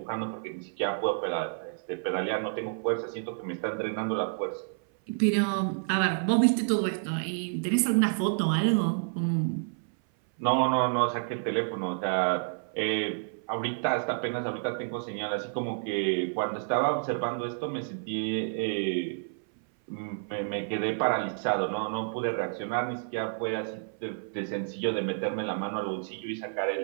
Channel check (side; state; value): left; silent; 56 dB below the other